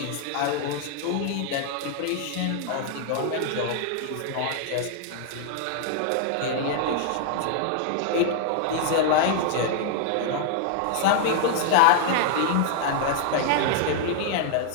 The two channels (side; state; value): both; different; correlation 0.00